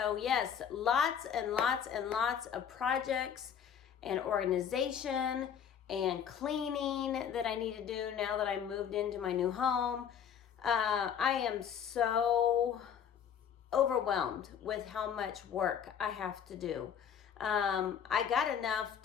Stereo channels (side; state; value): right; quieter; 8.2 dB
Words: yes, lots and lots and lots of projects and organization and cleaning that I need to do now that I moved into my new home. I am so overwhelmed with how much work I have to do. I got enough